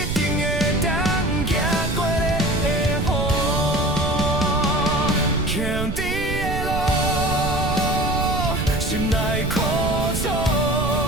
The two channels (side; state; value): right; noise; rumble, 4 dB below the sound